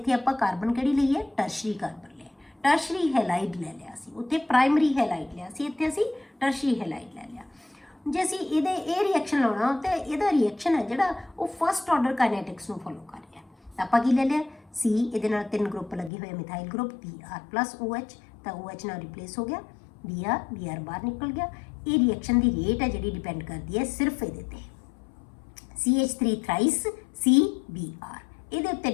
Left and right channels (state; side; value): drops out; right; at 16.1 s